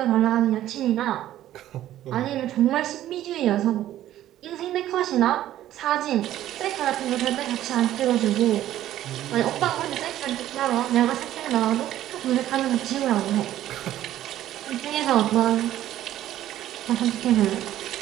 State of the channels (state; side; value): quieter; left; 13.1 dB